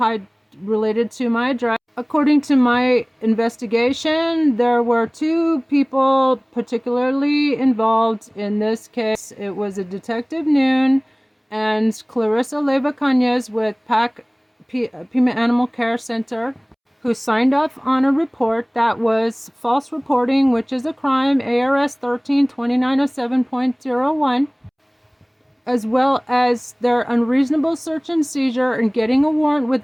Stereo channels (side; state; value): both; identical; correlation 1.00